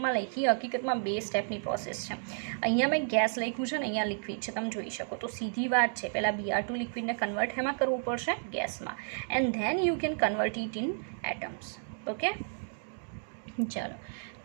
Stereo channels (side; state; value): left; silent; digital silence